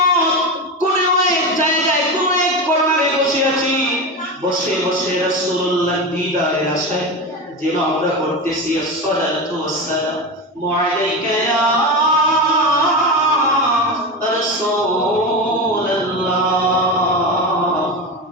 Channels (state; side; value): normal; both; correlation 0.21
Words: কোন এক জায়গায় কোন এক কর্নারে বসে আছি, বসে বসে রাসূলুল্লাহ দিদারের আশায় যেন আমরা করতেছি আসসালাতু ওয়াসসালামু আলাইকা ইয়া রাসূলুল্লাহ,